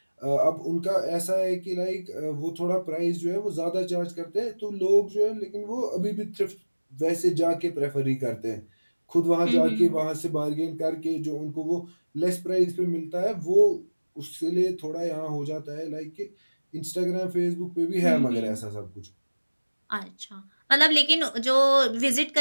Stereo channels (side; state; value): both; inverted; correlation -1.00